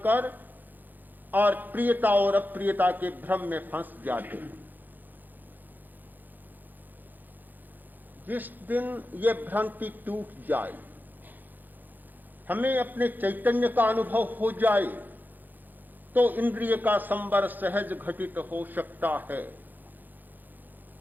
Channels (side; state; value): left; late; 0.086 ms